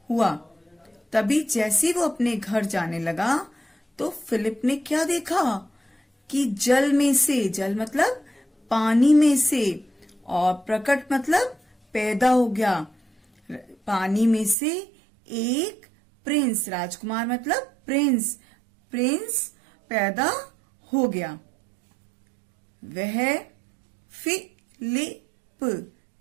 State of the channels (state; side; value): drops out; left; at 14.6 s